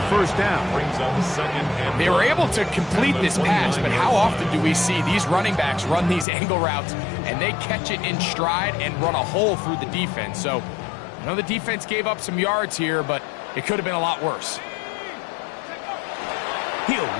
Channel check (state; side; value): drops out; right; at 6.2 s